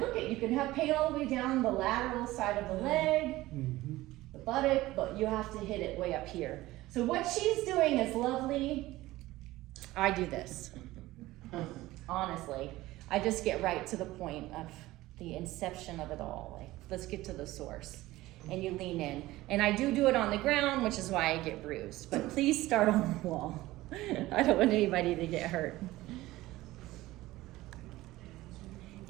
you can have pain all the way down the lateral side of the leg, the buttock, but you have to hit it way up here. So what she's doing is lovely. I do this. Honestly, I just get right to the point of the inception of it all. Like, let's get to the source. And you lean in. And I do it on the ground, which is why I get bruised. But please start on the wall. I don't want anybody to get hurt.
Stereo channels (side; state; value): left; quieter; 17.5 dB